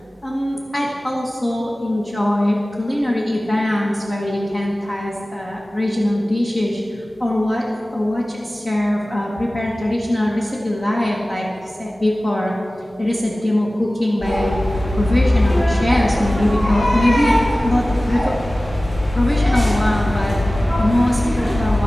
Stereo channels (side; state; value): both; normal; correlation 0.97